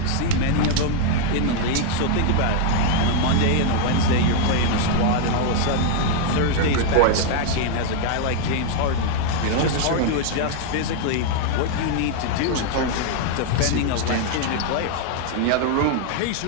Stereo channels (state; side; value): different; both; correlation 0.00